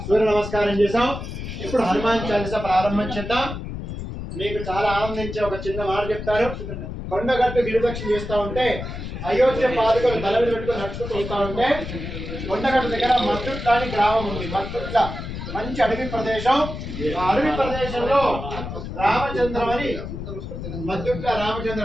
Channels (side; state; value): left; noise; rumble, 7 dB below the sound